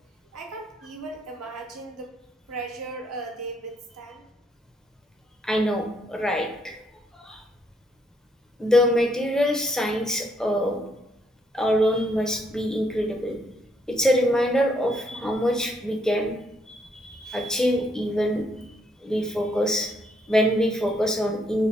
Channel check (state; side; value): normal; both; correlation 0.72